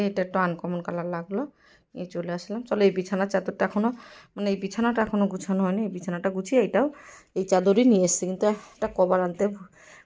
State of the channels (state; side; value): identical; both; correlation 1.00